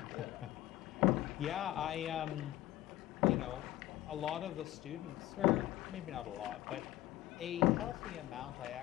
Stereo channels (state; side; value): quieter; right; 15.2 dB